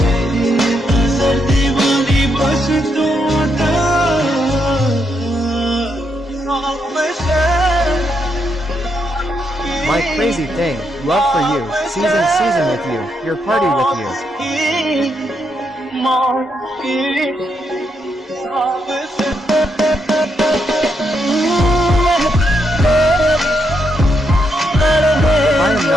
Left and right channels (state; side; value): normal; both; correlation 0.79